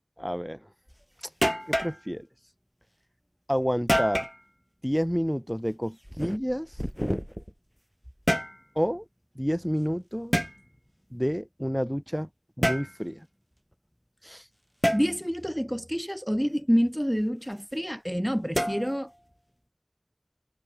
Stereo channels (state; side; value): identical; both; correlation 1.00